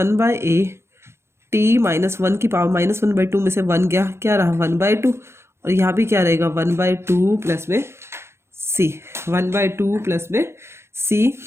t minus 1 की पावर माइनस 1/2 में से 1 गया, क्या रहा 1/2, और यहाँ भी क्या रहेगा 1/2 प्लस में c, 1/2 प्लस में c,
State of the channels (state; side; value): late; left; 0.12 ms